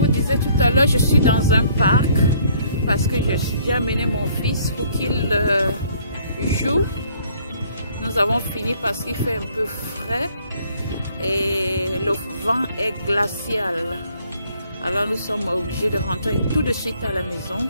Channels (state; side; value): inverted; both; correlation -0.61